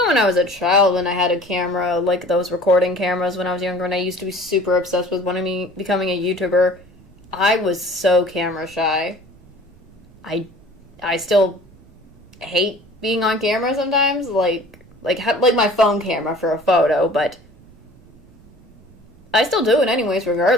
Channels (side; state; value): right; noise; rumble, 26 dB below the sound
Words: when I was a child, when I had a camera, like those recording cameras when I was younger, and I used to be super obsessed with becoming a YouTuber, I was so camera shy. I still hate being on camera sometimes, like my phone camera for a photo, but I still do it anyways,